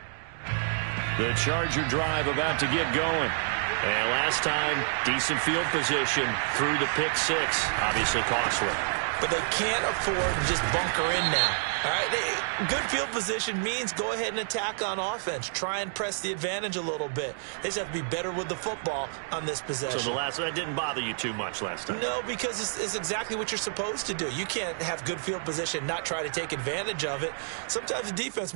The Charger drive about to get going. And last time, decent field position through the pick six. Obviously costly. But they can't afford to just bunker in now. All right, good field position means go ahead and attack on offense. Try and press the advantage a little bit. They just have to be better with the football on this possession. So that didn't bother you too much last time? No, because it's exactly what you're supposed to do. You can't have good field position, not try to take advantage of it. Sometimes the defense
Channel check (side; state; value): left; silent; digital silence